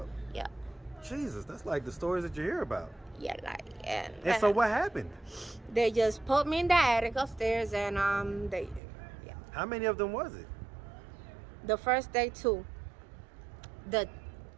Yeah. Jesus, that's like the stories that you hear about. Yeah, like, and So what happened? they just put me in the attic upstairs, and yeah. How many of them was it? The first day 2. The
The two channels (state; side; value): drops out; left; at 8.8 s